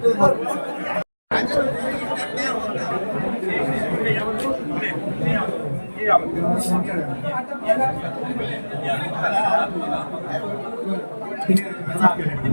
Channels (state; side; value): inverted; both; correlation -1.00